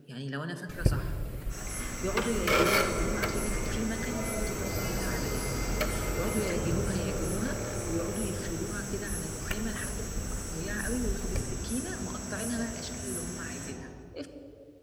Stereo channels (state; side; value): identical; both; correlation 1.00